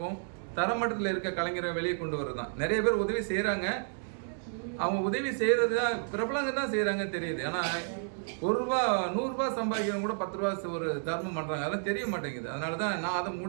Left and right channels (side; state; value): left; silent; digital silence